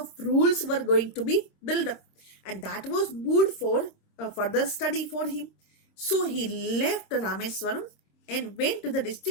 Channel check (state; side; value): late; right; 26 ms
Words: rules were going to be built up, and that was good for further study for him. So he left Rameswaram and went to the